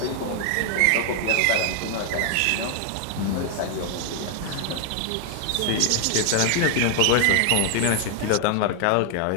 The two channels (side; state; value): both; different; correlation 0.00